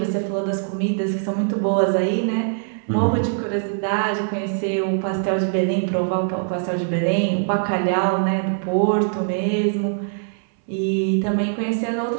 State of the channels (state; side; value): silent; left; 61 dB below the other